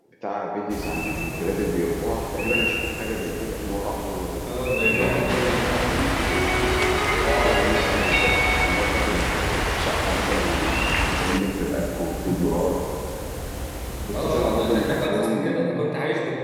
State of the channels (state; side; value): identical; both; correlation 1.00